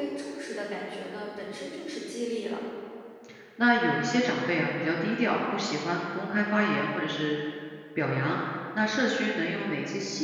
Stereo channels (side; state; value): both; identical; correlation 1.00